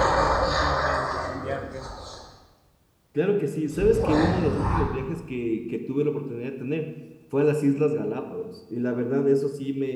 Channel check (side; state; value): both; identical; correlation 1.00